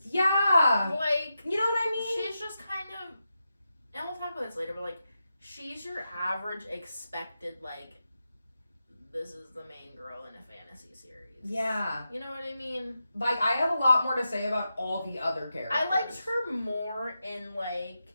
Yeah. Like, you know what I mean? She's just kind of, and we'll talk about this later, but like, she's your average expected, like, this is the main girl in a fantasy series. Yeah. You know what I mean? Like, I have a lot more to say about all the other characters. I liked her more in, like,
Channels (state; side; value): inverted; both; correlation -0.89